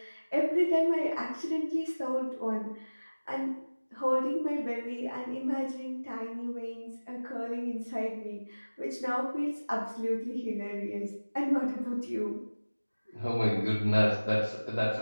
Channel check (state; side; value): inverted; both; correlation -1.00